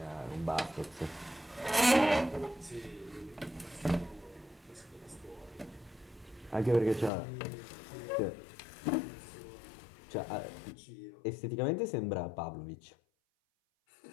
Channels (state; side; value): drops out; right; at 7.1 s